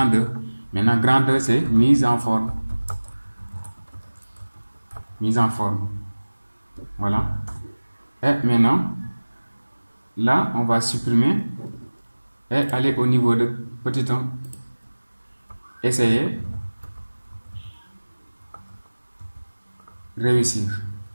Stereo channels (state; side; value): inverted; both; correlation -1.00